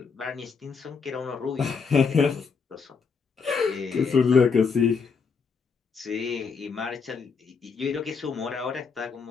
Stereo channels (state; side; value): quieter; right; 5.5 dB